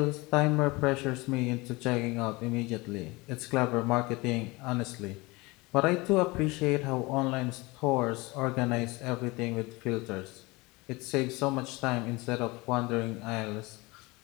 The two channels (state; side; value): quieter; right; 23.7 dB